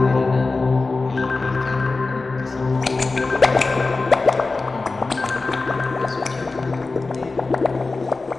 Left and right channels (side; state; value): right; quieter; 3.7 dB